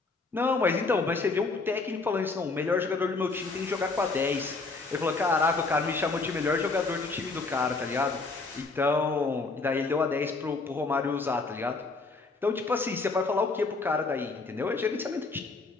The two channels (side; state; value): right; quieter; 3.8 dB